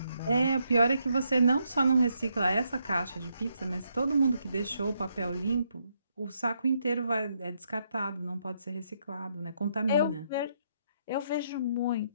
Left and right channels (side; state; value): both; inverted; correlation -0.77